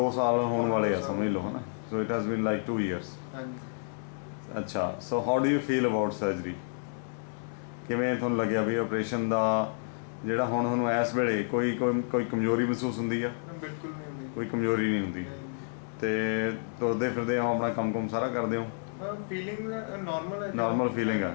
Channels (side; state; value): right; silent; digital silence